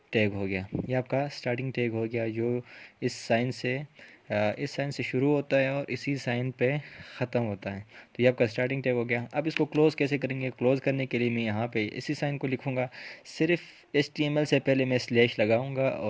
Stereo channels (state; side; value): identical; both; correlation 1.00